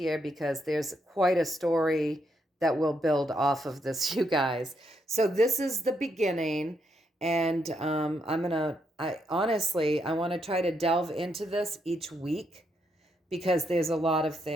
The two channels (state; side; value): normal; both; correlation 0.78